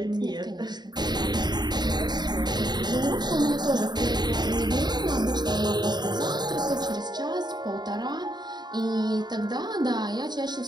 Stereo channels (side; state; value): left; late; 0.20 ms